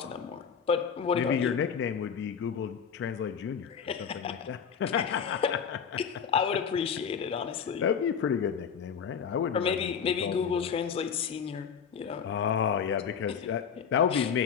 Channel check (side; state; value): right; quieter; 7.1 dB